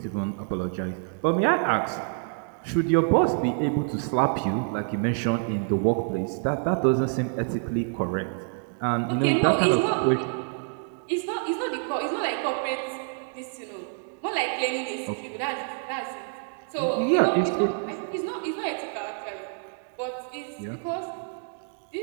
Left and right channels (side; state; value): left; silent; 56 dB below the other